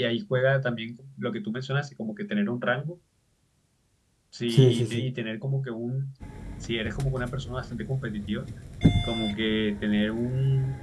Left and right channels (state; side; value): identical; both; correlation 1.00